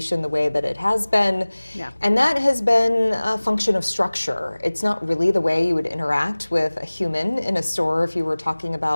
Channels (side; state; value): both; inverted; correlation -1.00